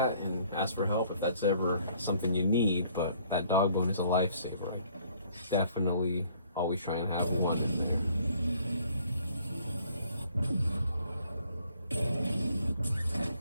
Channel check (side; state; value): both; inverted; correlation -0.61